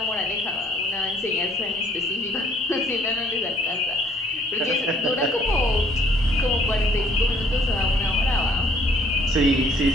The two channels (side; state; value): both; normal; correlation 0.61